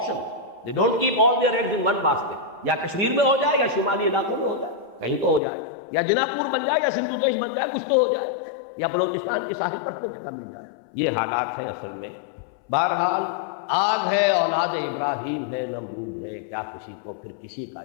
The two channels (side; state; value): right; drops out; at 5.4 s